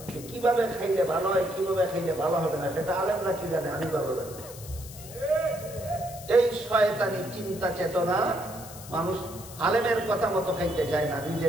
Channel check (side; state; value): left; noise; hiss, 15 dB below the sound